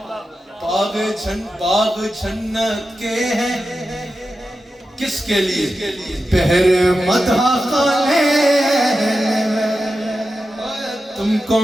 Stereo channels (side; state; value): both; normal; correlation 0.91